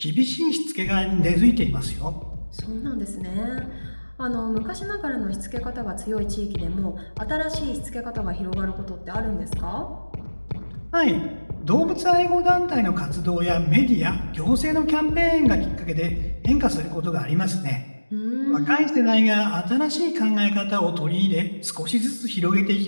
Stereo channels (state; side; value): inverted; both; correlation -1.00